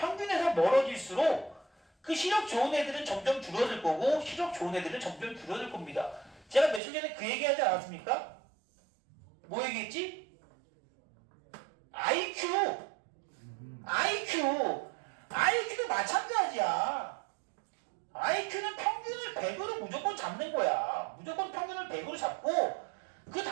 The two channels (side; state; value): left; drops out; at 6.8 s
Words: 멀어질수록 그 시력 좋은 애들은 점점 줄어들 거고 시력 좋은 애들은 점점 줄어들 겁니다. 제가 며칠 전에 그 얘기 하지 않았습니까? 뭐 얘기했지? IQ도 마찬가지야. IQ는 평균을 100으로 무조건 잡는 거야. 무조건 평균을 100으로 잡고 그